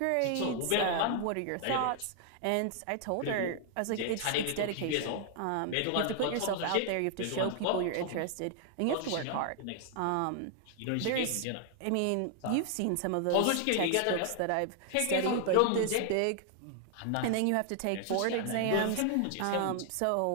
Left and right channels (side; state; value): both; different; correlation 0.00